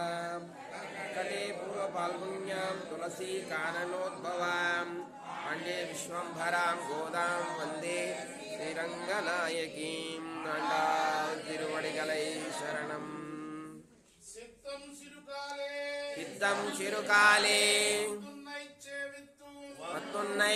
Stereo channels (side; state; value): both; identical; correlation 1.00